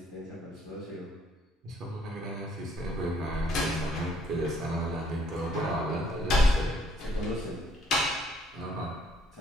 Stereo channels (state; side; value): normal; both; correlation 0.66